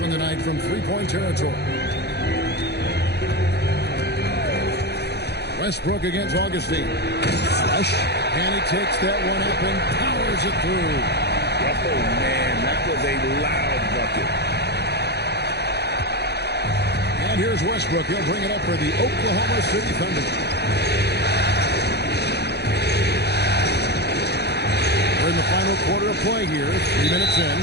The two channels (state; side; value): late; right; 0.48 ms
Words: tonight from three-point territory. Westbrook against Augustine. Flush. And he takes that one up and powers it through. Oh, man, that was a loud bucket. And here's Westbrook. He'll bring it up for the Oklahoma City Thunder. We're in the final quarter of play here. 3 minutes in.